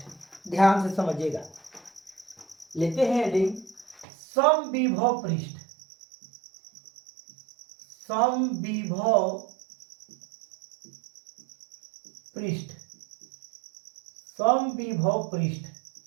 ध्यान से समझिएगा। लेते हैं हेडिंग समविभव पृष्ठ। समविभव पृष्ठ, समविभव पृष्ठ।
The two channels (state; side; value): drops out; left; at 4.0 s